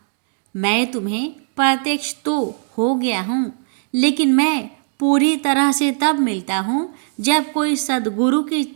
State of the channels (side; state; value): left; silent; digital silence